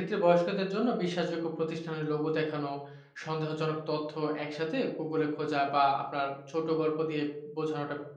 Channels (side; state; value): both; identical; correlation 1.00